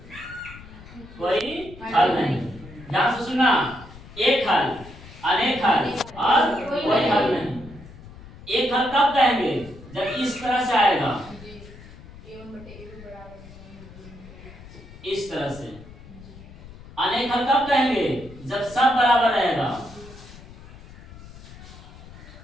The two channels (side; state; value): left; noise; rumble, 18 dB below the sound